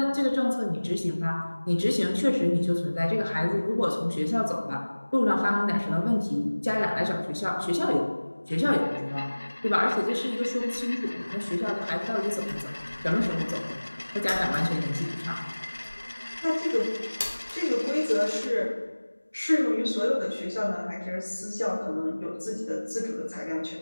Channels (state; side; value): inverted; both; correlation -1.00